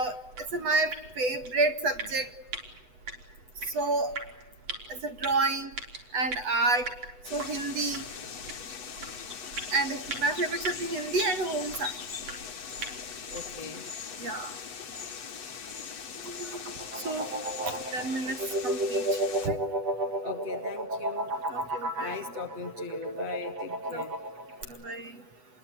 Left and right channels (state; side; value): late; left; 8.1 ms